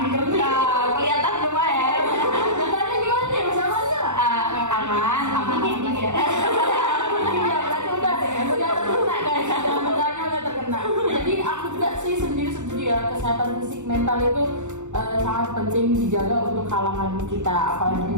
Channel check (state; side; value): late; left; 0.84 ms